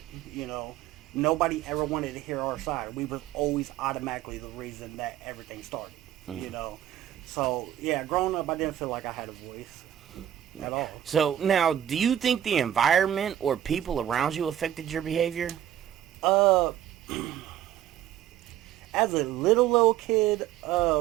Nobody ever wanted to hear our side. We were always automatically the reason that everything started. Hmm. You know, so yeah, growing up, I didn't feel like I had a voice at all. So now, do you think the environment or people around you affected your behavior? Uh, as a little kid,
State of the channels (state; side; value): quieter; left; 11.3 dB